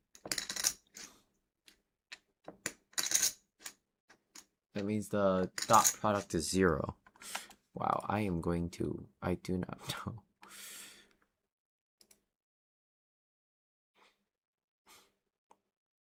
means the dot product is 0. Wow, I do not know.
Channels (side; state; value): both; identical; correlation 1.00